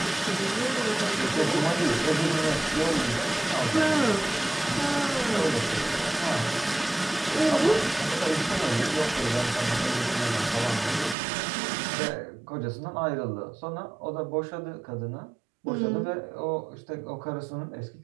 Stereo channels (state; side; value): drops out; left; at 11.2 s